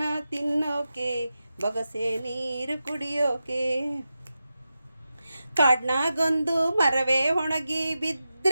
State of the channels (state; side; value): inverted; both; correlation -0.92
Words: ತಿನ್ನೋಕೆ ಬೊಗಸೆ ನೀರು ಕುಡಿಯೋಕೆ. ಕಾಡ್ನಾಗೊಂದು ಮರವೇ ಒಣಗಿ